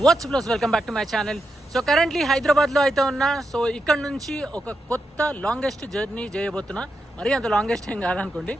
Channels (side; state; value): both; normal; correlation 0.85